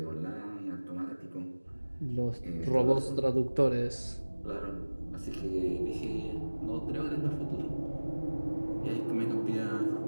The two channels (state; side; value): inverted; both; correlation -1.00